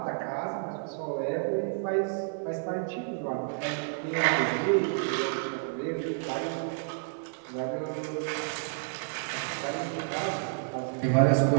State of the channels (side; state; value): left; silent; digital silence